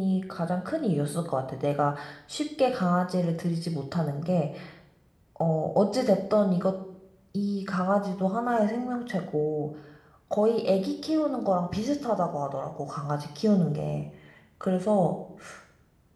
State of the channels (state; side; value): identical; both; correlation 1.00